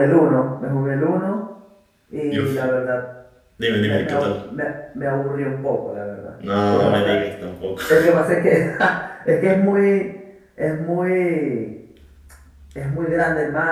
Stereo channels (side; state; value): both; identical; correlation 1.00